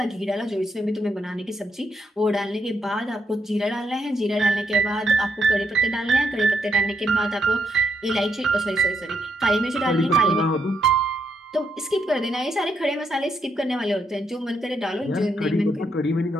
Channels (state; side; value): normal; both; correlation 0.78